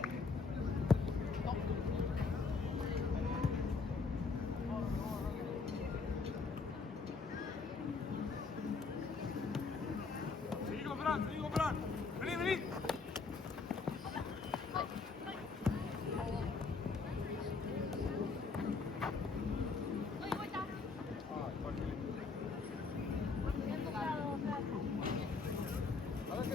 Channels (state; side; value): quieter; right; 4.5 dB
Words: Seguí con Fran. Vení, vení. A ver si